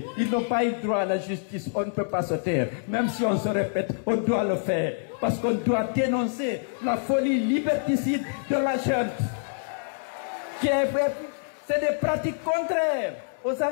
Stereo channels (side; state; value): right; silent; 60 dB below the other